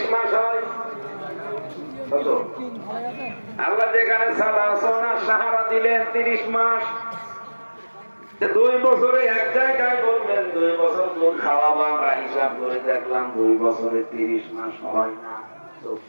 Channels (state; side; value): inverted; both; correlation -1.00